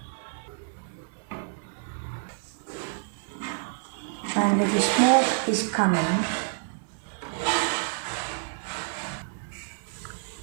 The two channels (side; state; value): left; silent; digital silence